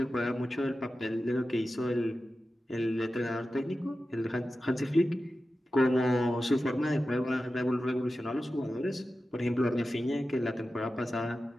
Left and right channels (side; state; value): both; normal; correlation 0.93